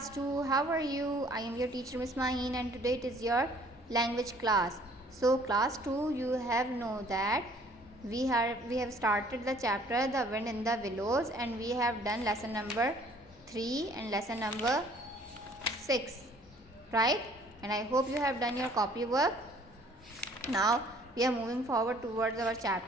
2. How are you? I am your teacher Miss Maheen and today it is your language class. So class 2, you have know that we have started the chapter The Wind in the Willows and we have done lesson number 3 and lesson number 6, right? And I hope you have done your copy work. Now we are moving forward towards our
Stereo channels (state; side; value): normal; both; correlation 0.57